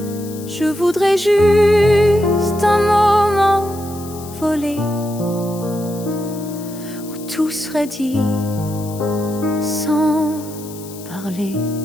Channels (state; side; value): noise; left; hiss, 17 dB below the sound